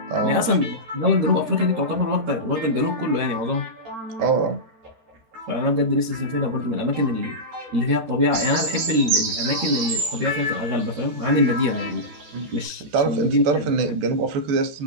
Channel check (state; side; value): late; left; 13 ms